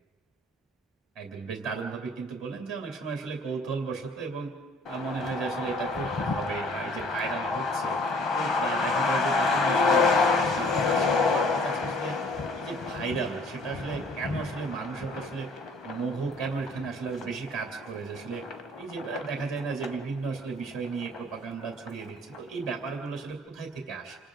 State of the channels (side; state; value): both; normal; correlation 0.55